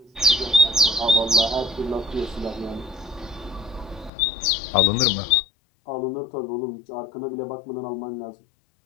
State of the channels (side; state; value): right; drops out; at 4.1 s